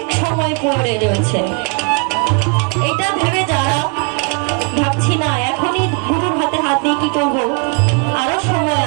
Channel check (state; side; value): quieter; left; 34.9 dB